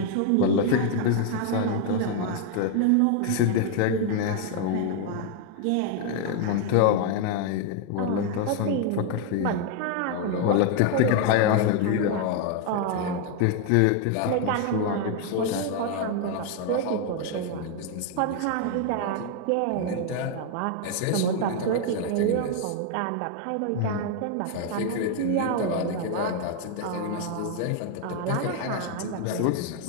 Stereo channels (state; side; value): different; both; correlation 0.00